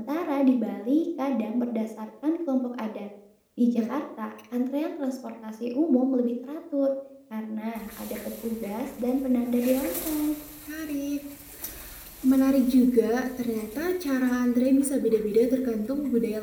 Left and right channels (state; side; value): identical; both; correlation 1.00